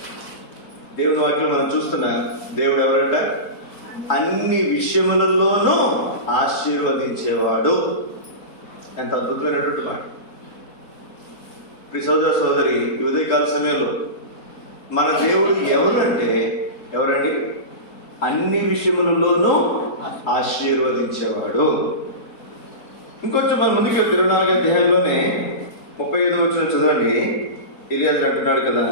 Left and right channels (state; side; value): late; right; 4.6 ms